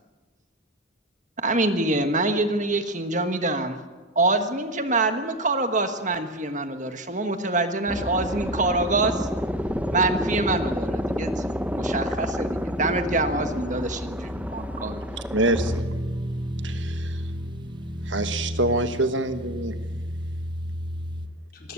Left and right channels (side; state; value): both; normal; correlation 0.21